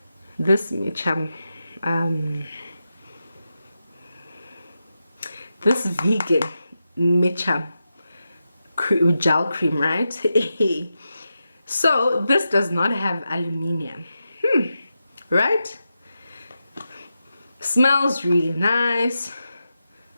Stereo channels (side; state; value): both; inverted; correlation -0.90